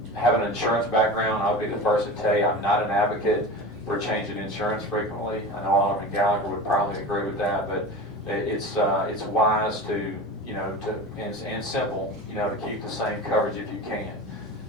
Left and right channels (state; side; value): normal; both; correlation 0.31